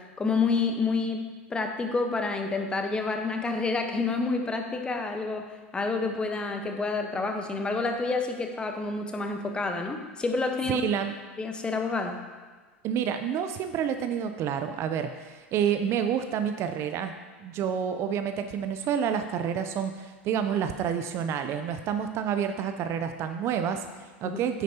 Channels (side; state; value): both; normal; correlation 0.46